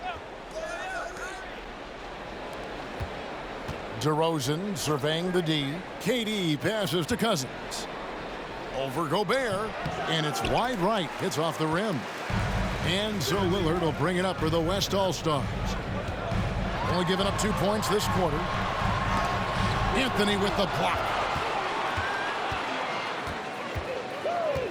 DeRozan surveying the D. KD passes to Cousins. Over Gobert, and it's wide right. It's off the rim. And so Lillard will bring it up for the West All-Stars. Only giving up 2 points this quarter. Anthony with the block.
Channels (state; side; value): identical; both; correlation 1.00